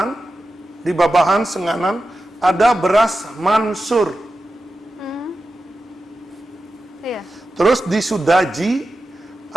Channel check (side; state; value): both; normal; correlation 0.92